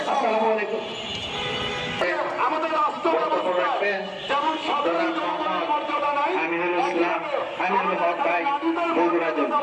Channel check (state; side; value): identical; both; correlation 1.00